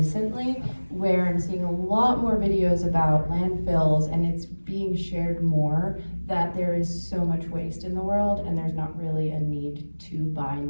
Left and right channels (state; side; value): inverted; both; correlation -1.00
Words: where I'm seeing a lot more videos about landfills, and it's being shared more that there is so much waste in the world and there's not really a need to buy